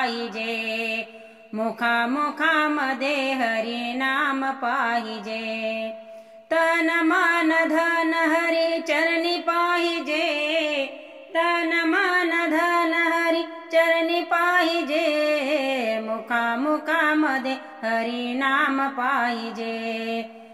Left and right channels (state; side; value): identical; both; correlation 1.00